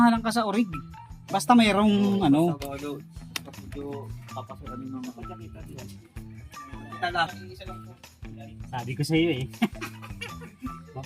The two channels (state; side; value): identical; both; correlation 1.00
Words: ka sa orig. Basta mayroong ano. Papasukan yung mga kita lang. Sabi ko sa iyo eh.